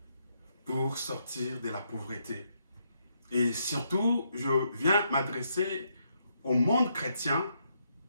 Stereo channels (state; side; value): inverted; both; correlation -0.77